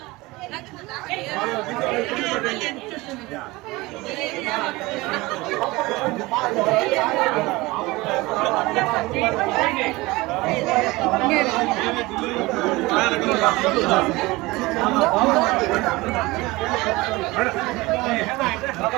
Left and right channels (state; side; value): quieter; left; 21.5 dB